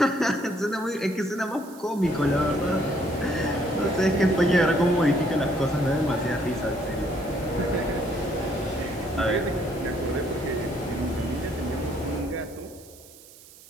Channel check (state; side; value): noise; right; hiss, 21 dB below the sound